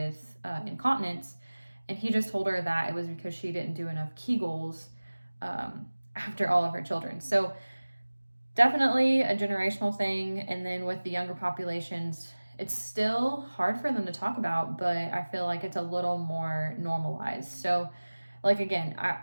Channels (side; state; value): both; inverted; correlation -1.00